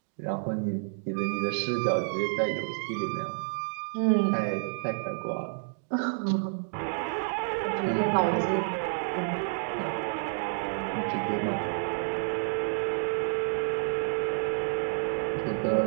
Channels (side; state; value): left; silent; digital silence